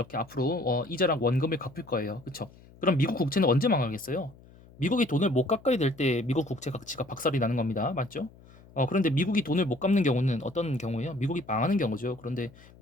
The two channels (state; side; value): noise; left; hum, 24 dB below the sound